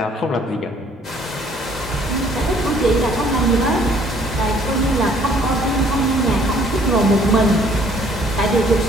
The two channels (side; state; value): both; normal; correlation 0.60